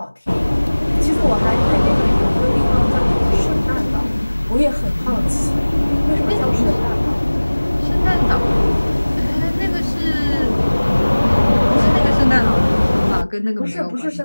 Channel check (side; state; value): both; inverted; correlation -1.00